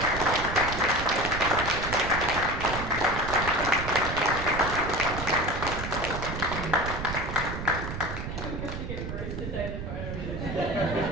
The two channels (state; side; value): noise; right; rumble, 6 dB below the sound